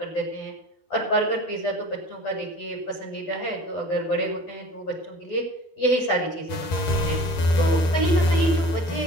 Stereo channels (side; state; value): right; late; 12 ms